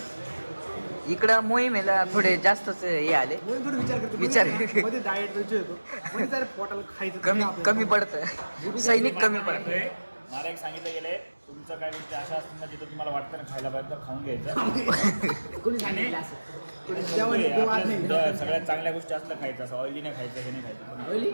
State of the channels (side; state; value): both; inverted; correlation -1.00